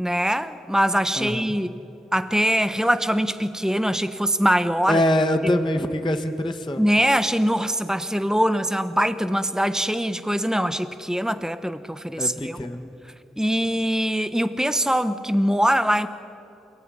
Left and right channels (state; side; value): normal; both; correlation 0.88